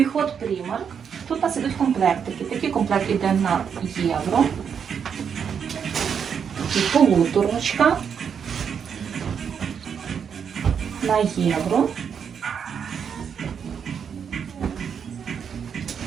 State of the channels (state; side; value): quieter; left; 7.2 dB